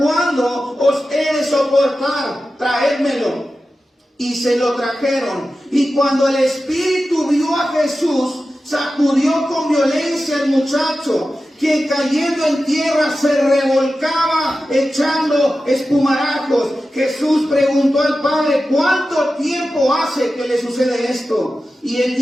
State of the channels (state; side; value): normal; both; correlation 0.93